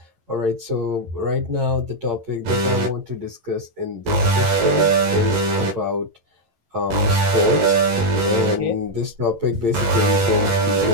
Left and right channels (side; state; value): left; late; 11 ms